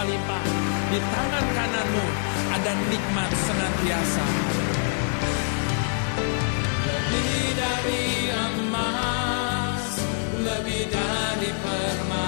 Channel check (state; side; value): silent; right; digital silence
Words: Di tangan kananmu ada nikmat senantiasa. Lebih dari emas, lebih dari